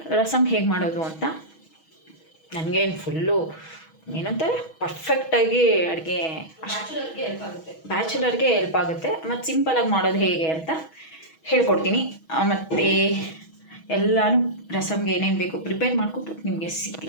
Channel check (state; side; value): late; right; 6.2 ms